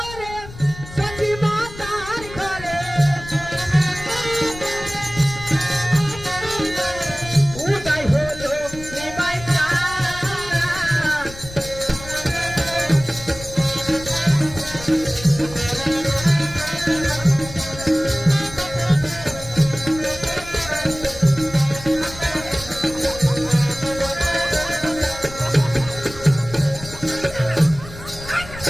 সখী মাতার ঘরে উদয় হলো নিমাই চাঁদ।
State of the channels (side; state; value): left; noise; rumble, 14 dB below the sound